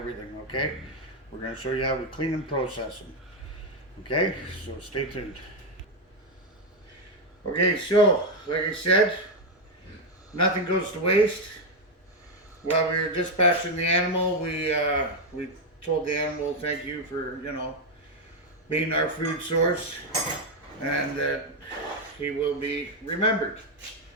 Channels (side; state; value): both; normal; correlation 0.05